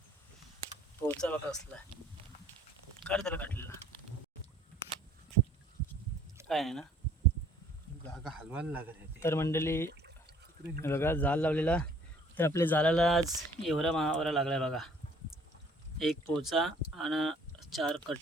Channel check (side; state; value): both; normal; correlation 0.57